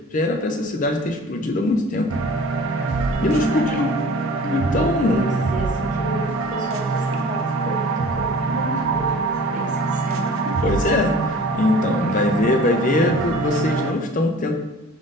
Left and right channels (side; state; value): both; normal; correlation 0.44